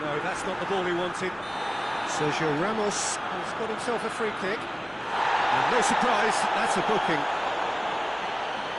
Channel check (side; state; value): both; identical; correlation 1.00